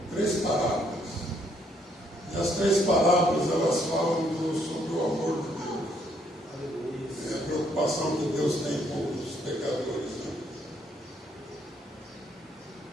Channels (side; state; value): both; normal; correlation 0.70